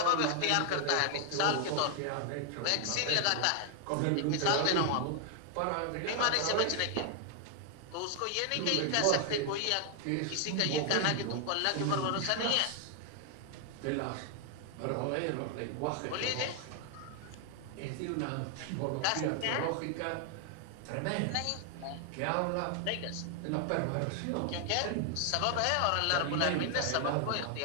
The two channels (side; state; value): both; different; correlation 0.00